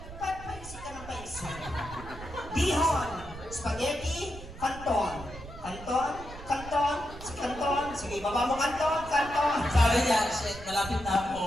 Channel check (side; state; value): right; noise; rumble, 14 dB below the sound